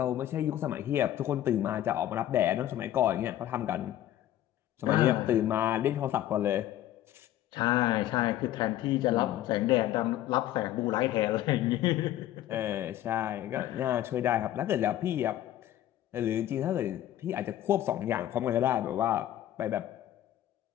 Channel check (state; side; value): quieter; right; 12.9 dB